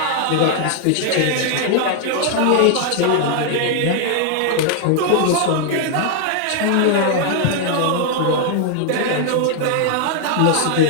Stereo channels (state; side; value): different; both; correlation 0.00